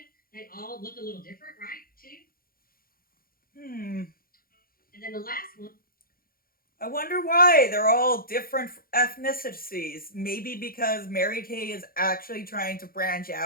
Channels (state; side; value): late; right; 0.42 ms